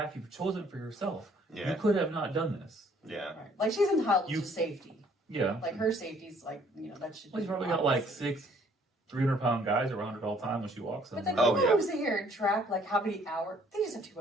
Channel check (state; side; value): normal; both; correlation 0.61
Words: you've chosen for yourself. Yeah. You could have not done this. Yeah. Right. Like, she's entitled You- to safety. Yeah. Like, her safety's like, that should Well, be you probably got like obvious. 6 300-pound guys around her all the time when she walks But somewhere. then Oh, people yeah. who sit here and track like how many hours, they just have too